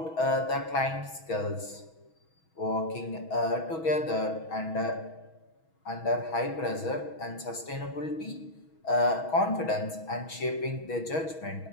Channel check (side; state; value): right; late; 6.2 ms